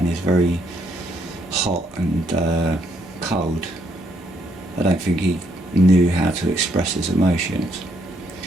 He was very hot and cold. I don't think he knew how to express his emotions.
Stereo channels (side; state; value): both; normal; correlation 0.73